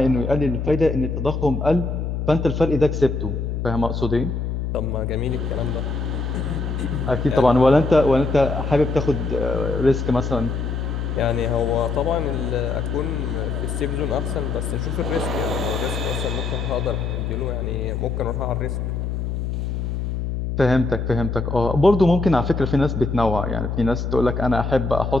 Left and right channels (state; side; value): noise; left; hum, 2 dB below the sound